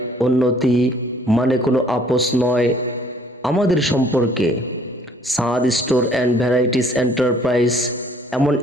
উন্নতি, মানে কোনো আপোষ নয় আমাদের সম্পর্কে। সাদ স্টোর অ্যান্ড ভ্যারাইটিস এন্টারপ্রাইজ এমন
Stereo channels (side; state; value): both; normal; correlation 0.58